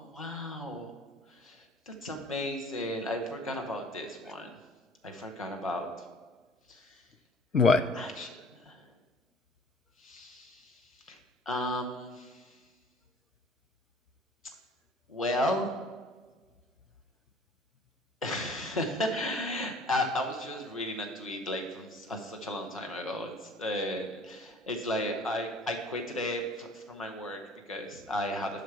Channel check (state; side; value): normal; both; correlation 0.50